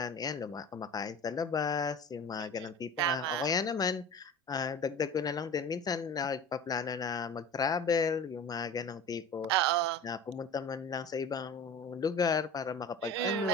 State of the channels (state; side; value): normal; both; correlation 0.36